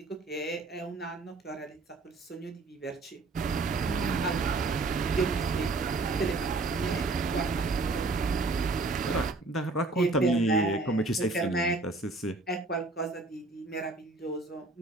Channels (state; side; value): quieter; left; 3.3 dB